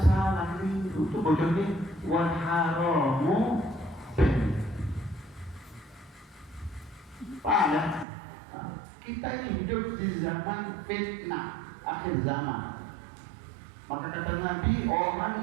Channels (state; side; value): drops out; left; at 8.1 s